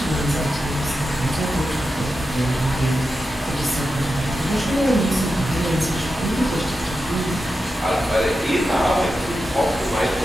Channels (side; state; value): both; normal; correlation 0.90